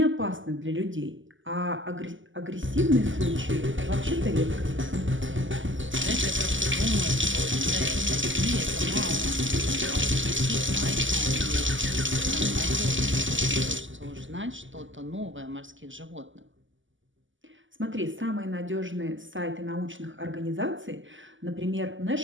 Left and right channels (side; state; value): left; late; 0.56 ms